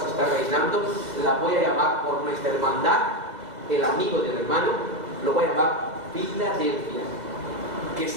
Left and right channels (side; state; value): left; late; 2.0 ms